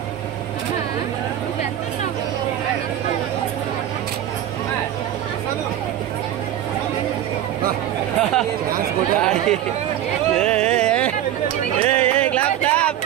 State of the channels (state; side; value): quieter; left; 11.7 dB